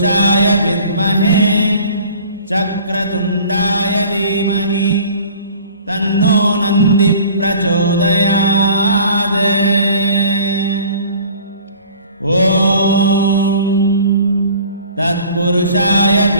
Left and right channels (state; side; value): inverted; both; correlation -0.48